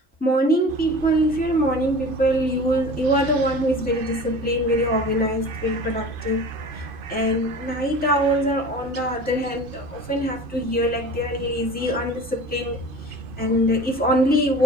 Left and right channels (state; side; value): normal; both; correlation 0.40